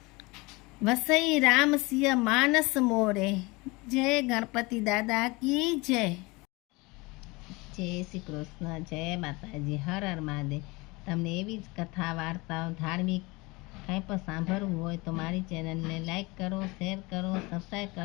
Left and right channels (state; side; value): quieter; right; 24.4 dB